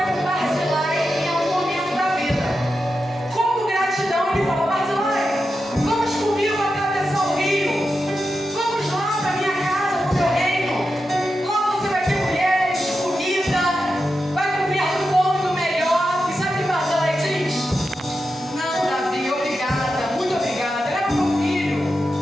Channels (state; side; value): normal; both; correlation 0.89